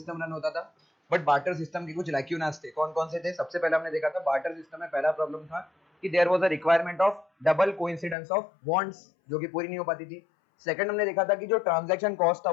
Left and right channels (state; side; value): drops out; right; at 8.2 s